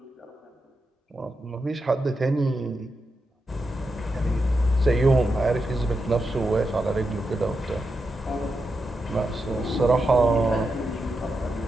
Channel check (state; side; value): normal; both; correlation 0.87